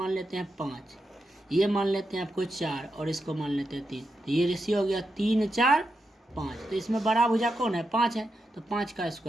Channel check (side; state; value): both; normal; correlation 0.86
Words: लेते हैं 5, ये मान लेते हैं आपको 4 और इसको मान लेते हैं 3, तो ये रेशियो हो गया 3 4 5। तो इसमें बड़ा भुजा कौन है, 5 है, तो 5 का